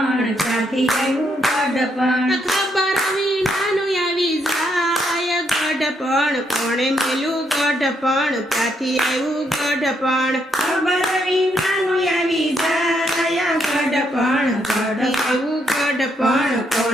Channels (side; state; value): both; normal; correlation 0.76